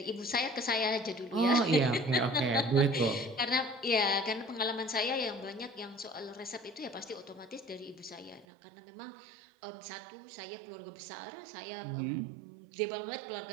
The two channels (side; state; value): left; drops out; at 8.5 s